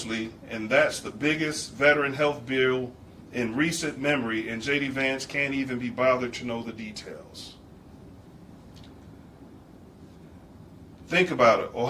and that's the biggest veteran health bill in recent memory, and J.D. Vance can't even be bothered to know the details. Think about it.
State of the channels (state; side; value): identical; both; correlation 1.00